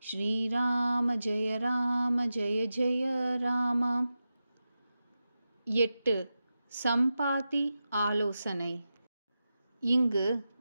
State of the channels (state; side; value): inverted; both; correlation -0.91